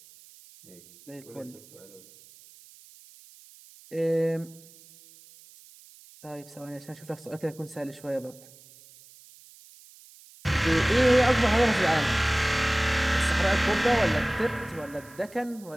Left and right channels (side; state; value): right; noise; hiss, 23 dB below the sound